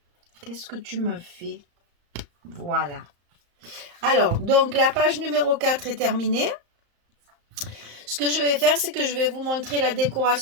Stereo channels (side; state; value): left; late; 35 ms